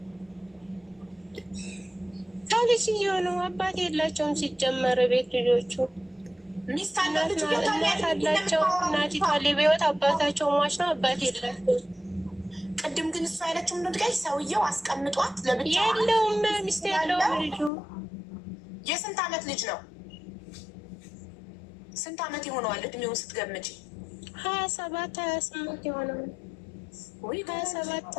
ከልጅየው ነው። አባት የላቸውም ሲጀመር ቤት ልጆቹ ሚስት አላቸው እናቲቷ በሕይወት አባታቸው ሟች ነው። አባት የላቸውም። ቅድም ግን እሷ ያለችው ምንድን ነው? ሰውየው አስቀምጧት ለብቻ የለውም ሚስት የለውም። ልጁ የስንት ዓመት ልጅ ነው? ስንት ዓመት ይሆነዋል እድሜውን ስትገምጪ? 27 28 ይሆነዋል።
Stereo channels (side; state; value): right; drops out; at 17.7 s